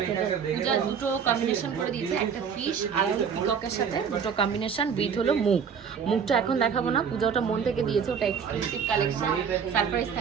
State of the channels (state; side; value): quieter; left; 6.9 dB